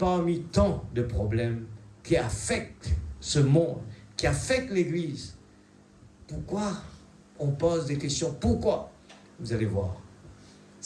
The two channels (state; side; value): identical; both; correlation 1.00